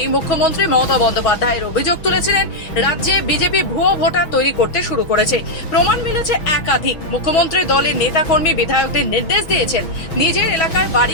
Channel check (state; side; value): late; right; 6.1 ms